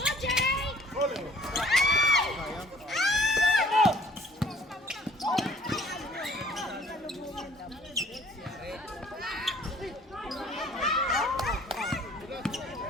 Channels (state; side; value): normal; both; correlation 0.56